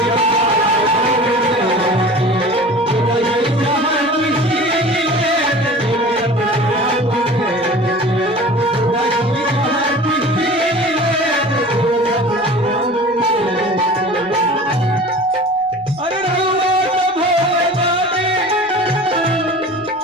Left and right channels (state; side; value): noise; right; rumble, 29 dB below the sound